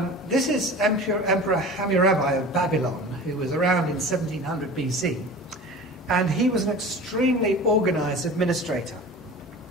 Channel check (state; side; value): normal; both; correlation 0.37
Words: This is Emperor Hammurabi of Babylon, who was around in 1700 BC. And he was an extremely organized administrator.